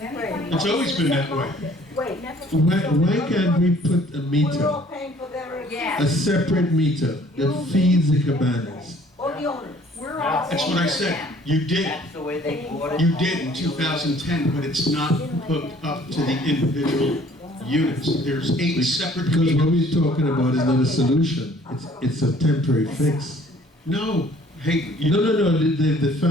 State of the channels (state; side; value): normal; both; correlation 0.56